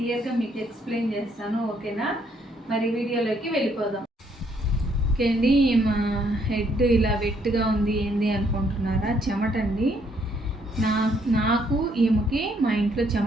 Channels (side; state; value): both; normal; correlation 0.69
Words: మీకు ఎక్స్ప్లెయిన్ చేస్తాను. ఓకేనా? మరి వీడియోలోకి వెళ్ళిపోదాం. ఓకే అండి, మా హెడ్ ఇలా వెట్గా ఉంది ఏంది అనుకుంటున్నారా? చెమట అండి. నాకు ఈమెకి మా ఇంట్లో